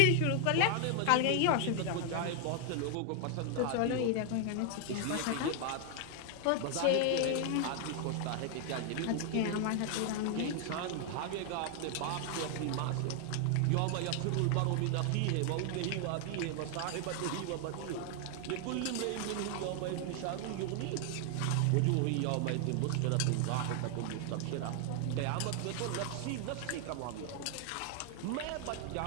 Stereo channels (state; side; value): different; both; correlation 0.00